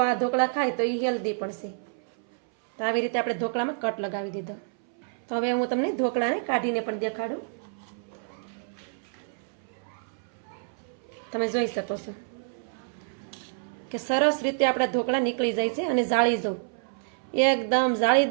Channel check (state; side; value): silent; left; 59 dB below the other